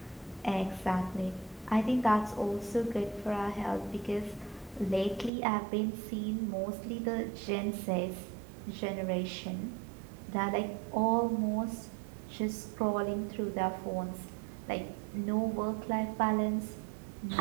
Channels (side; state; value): left; drops out; at 5.3 s